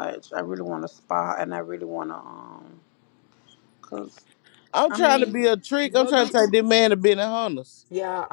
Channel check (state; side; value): silent; right; 63 dB below the other